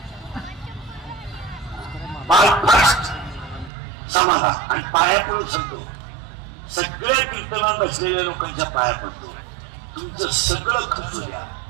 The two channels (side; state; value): left; drops out; at 3.7 s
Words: First समाधान. आणि पाया पडून सांगतो, सगळ्या कीर्तनात बसलेल्या लोकांच्या पाया पडतो, तुमचं सगळं खचू द्या,